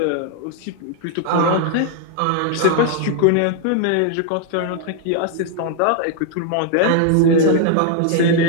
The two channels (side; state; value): both; different; correlation 0.00